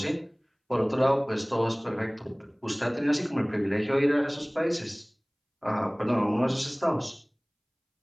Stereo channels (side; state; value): both; identical; correlation 1.00